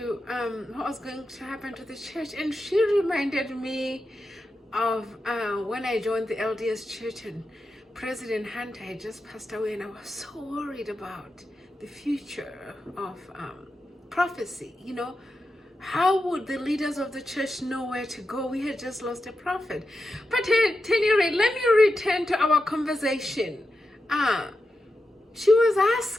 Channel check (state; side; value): normal; both; correlation 0.89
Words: what was going to happen to the church. And she reminded me of when I joined the LDS church and President Hunter had just passed away, and I was so worried about the future of prophecy. You know, how would the leaders of the church know where to go? We had just lost a prophet. But at any rate, let me return to our conversation. She was